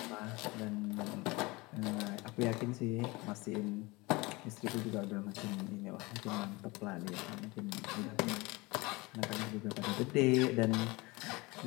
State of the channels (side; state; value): right; quieter; 23.8 dB